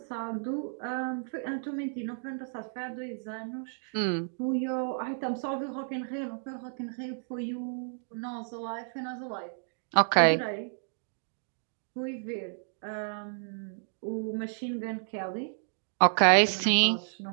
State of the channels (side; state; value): left; silent; digital silence